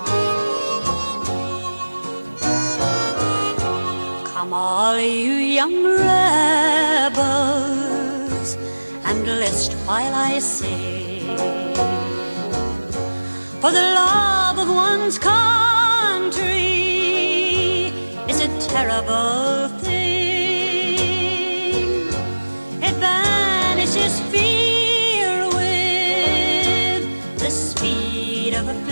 all you young rebels, and list while I sing, for the love of one's country is a terrible thing. It banishes fear with the speed of a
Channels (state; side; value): inverted; both; correlation -1.00